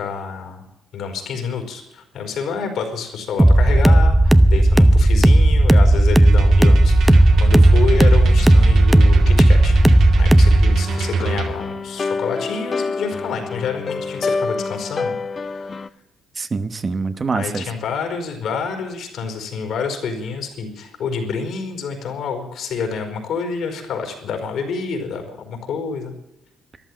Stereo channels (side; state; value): both; normal; correlation 0.93